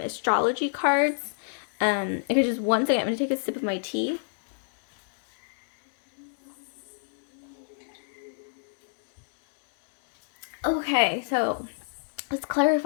cards. Okay, just one second. I'm going to take a sip of my tea. Okay, so let's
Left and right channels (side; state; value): right; silent; digital silence